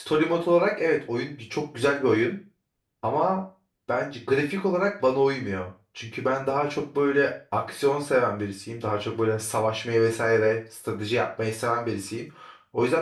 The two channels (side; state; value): both; identical; correlation 1.00